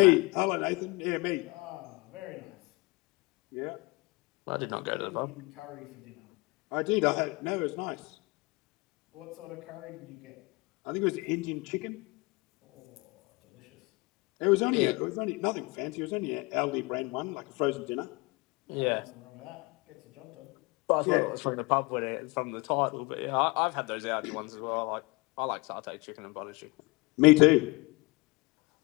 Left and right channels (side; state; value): right; quieter; 26.0 dB